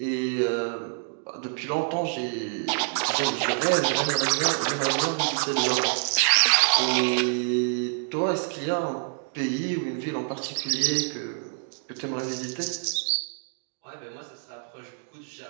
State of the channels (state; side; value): silent; left; 57 dB below the other